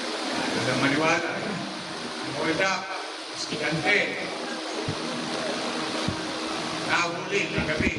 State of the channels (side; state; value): both; identical; correlation 1.00